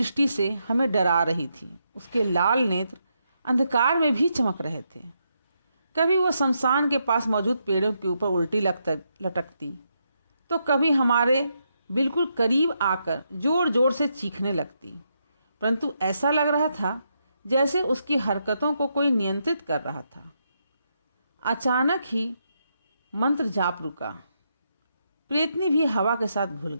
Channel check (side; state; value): both; inverted; correlation -0.81